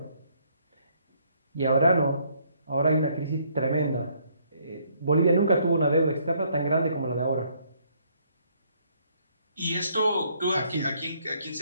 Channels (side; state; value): both; inverted; correlation -0.68